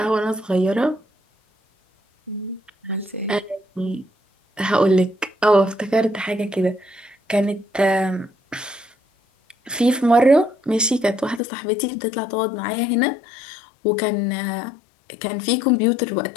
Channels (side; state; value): right; drops out; at 11.4 s